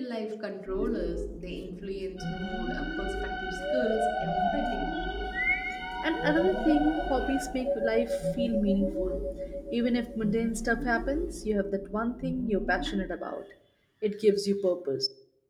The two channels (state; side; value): identical; both; correlation 1.00